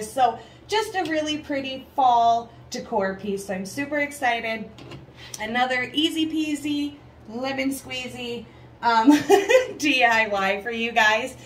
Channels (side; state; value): both; identical; correlation 1.00